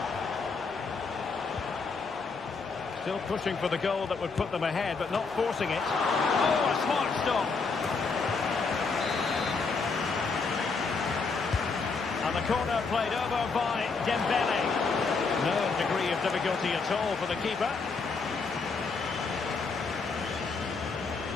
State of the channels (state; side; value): quieter; right; 4.6 dB